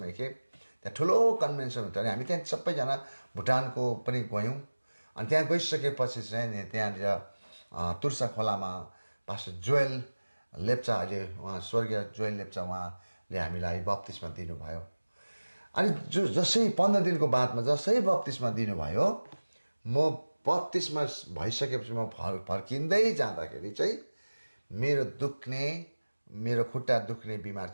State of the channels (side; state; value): both; inverted; correlation -1.00